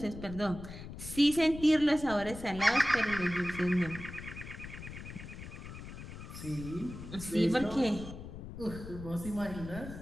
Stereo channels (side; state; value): left; noise; rumble, 11 dB below the sound